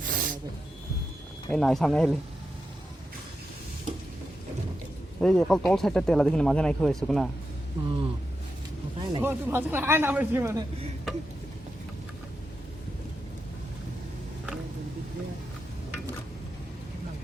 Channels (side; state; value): both; normal; correlation 0.88